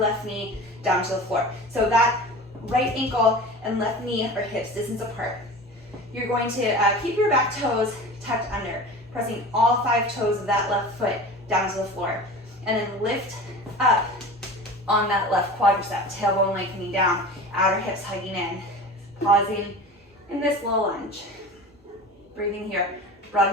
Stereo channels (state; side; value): normal; both; correlation 0.35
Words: knee down to the floor. So that right ankle and left knee are hips distance apart. You're going to keep your back toes tucked under, pressing all 5 toes of that left foot down to the floor, and then lift up on that left quadricep, tailbone lengthening down, outer hips hugging in, pausing in this low lunge. Breathing here,